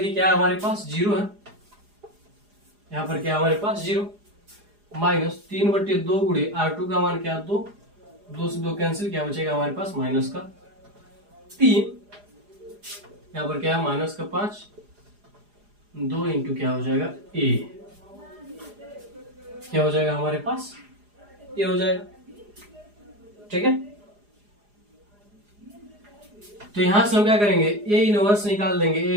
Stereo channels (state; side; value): late; left; 4.9 ms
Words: क्या हमारे पास 0 है, यहाँ पर क्या हमारे पास 0, माइनस 3/2 गुणे R2 का मान क्या 2, 2 से 2 कैंसिल, क्या बचेगा हमारे पास माइनस का 3, यहाँ पर क्या है माइनस का 5, 2 इंटू क्या हो जाएगा a, क्या हो जाएगा हमारे पास ये हो जाएगा। ठीक है, तो यहां से हम क्या करेंगे ए इनवर्स निकाल देंगे। ए